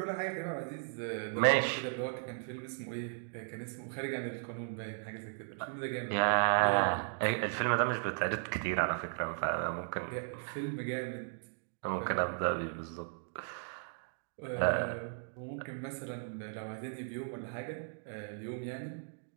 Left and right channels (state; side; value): silent; left; digital silence